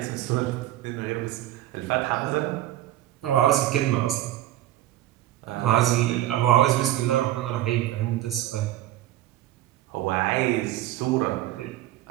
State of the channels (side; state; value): left; quieter; 14.2 dB